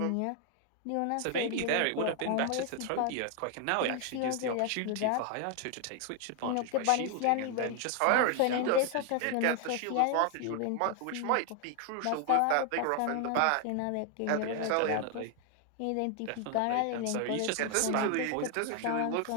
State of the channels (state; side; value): different; both; correlation 0.00